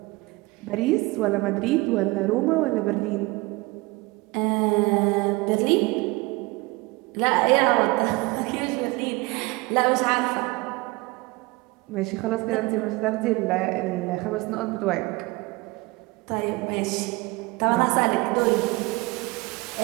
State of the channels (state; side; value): quieter; left; 23.5 dB